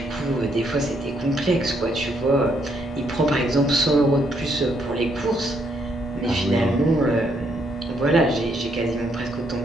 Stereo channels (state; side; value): normal; both; correlation 0.73